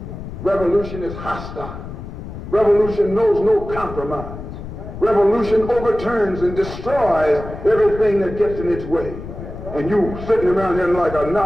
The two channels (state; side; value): noise; left; rumble, 10 dB below the sound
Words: Revolution is hostile. Revolution knows no compromise. Revolution overturns and destroys everything that gets in its way. And you sitting around here like a